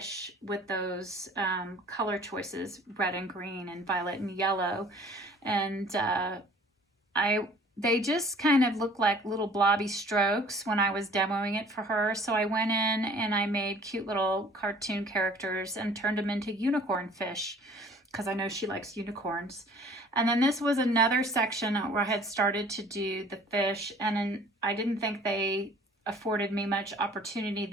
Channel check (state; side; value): normal; both; correlation 0.52